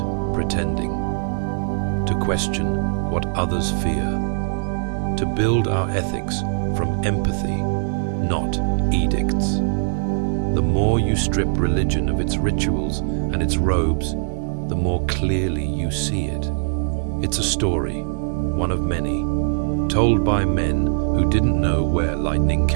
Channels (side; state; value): left; silent; 59 dB below the other